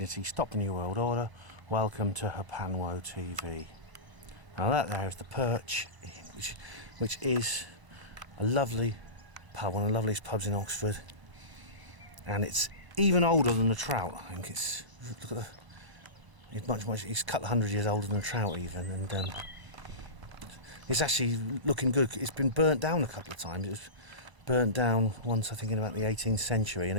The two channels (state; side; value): late; left; 1.0 ms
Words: stop the New World Order. Welcome to Hapanwo TV. Now that there is the Perch, which is a lovely pub, one of the loveliest pubs in Oxford, and it's even older than the Trout. I think it's, look at it's a couple of 100 years older than the Trout even, and it's actually looking good. It's been burnt down a couple of times. It was burnt down once, I think, in about the 18th century, and